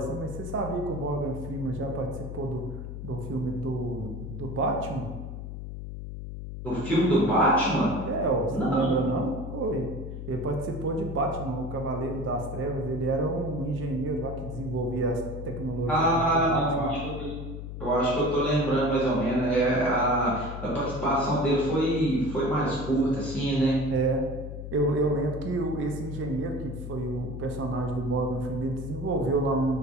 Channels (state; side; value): noise; left; hum, 8 dB below the sound